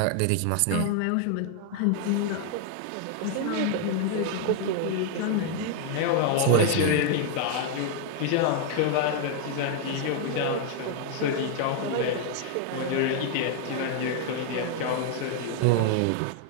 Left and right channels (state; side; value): different; both; correlation 0.00